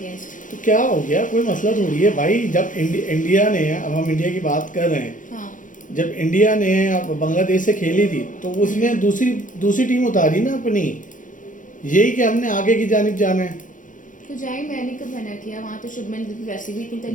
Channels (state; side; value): late; right; 0.38 ms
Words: तो क्या हो गया, कोई मसला थोड़ी है भाई। जब इंडिया ने, अब हम इंडिया की बात कर रहे हैं, जब इंडिया ने बांग्लादेश से खेली थी तो उसने दूसरी टीम उतारी ना अपनी, यही कि हमने आगे की जानिब जाना है। तो जाए, मैंने कब मना किया? वहाँ तो शुभमन गिल पे वैसे भी इतनी